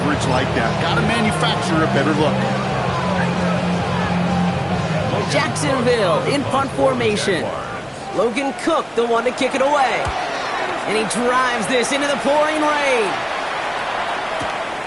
like that. Got to manufacture a better look. Jacksonville in punt formation. Logan Cook, the one to kick it away. And he drives this into the pouring rain.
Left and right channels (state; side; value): identical; both; correlation 1.00